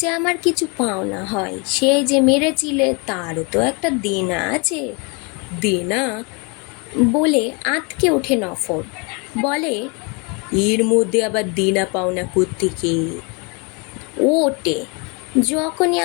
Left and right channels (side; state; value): right; quieter; 31.7 dB